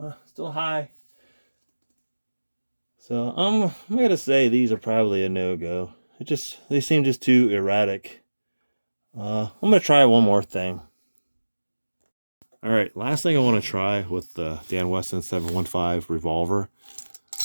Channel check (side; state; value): both; inverted; correlation -1.00